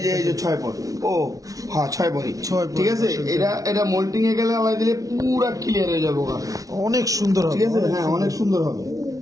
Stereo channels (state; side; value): late; left; 0.17 ms